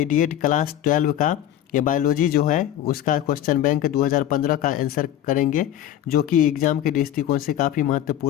क्लास 12 का ये बायोलॉजी जो है उसका क्वेश्चन बैंक 2015 का आंसर करेंगे, जो कि एग्जाम के दृष्टिकोण से काफ़ी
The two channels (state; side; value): quieter; right; 11.7 dB